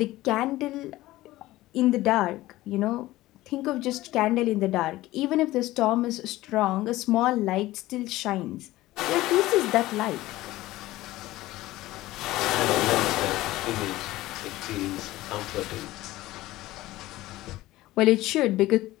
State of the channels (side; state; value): right; quieter; 17.1 dB